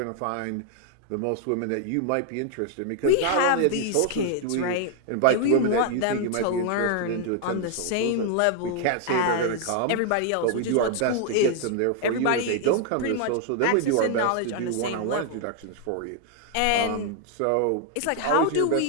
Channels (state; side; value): different; both; correlation 0.00